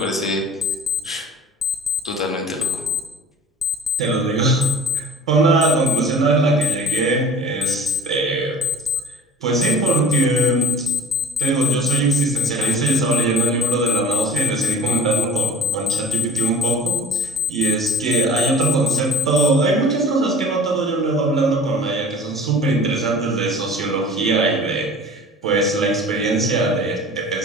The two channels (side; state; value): both; normal; correlation 0.40